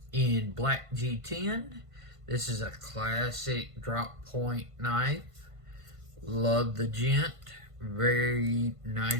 in black G10. This is a classic drop point knife. Love the Gent. Very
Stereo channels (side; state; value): left; late; 1.5 ms